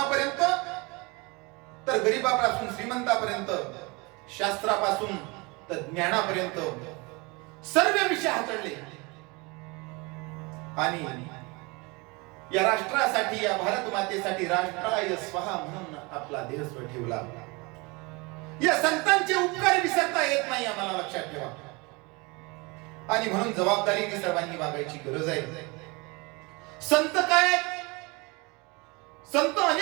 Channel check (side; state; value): left; quieter; 26.9 dB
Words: तर गरीबापासून श्रीमंतापर्यंत, शास्त्रापासून तर ज्ञानापर्यंत सर्व विषय हाताळले. आणि या राष्ट्रासाठी, या भारत मातेसाठी राष्ट्राय स्वहा म्हणून आपला देह स्व ठेवला. या संतांचे उपकार विसरता येत नाही, आम्हाला लक्षात ठेवा. आणि म्हणून जबाबदारीने सर्वांनी वागायची गरज आहे. संत काय? संत